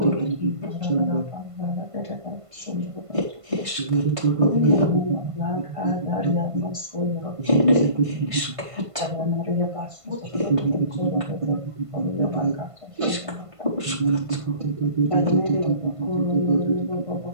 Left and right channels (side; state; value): left; late; 1.5 ms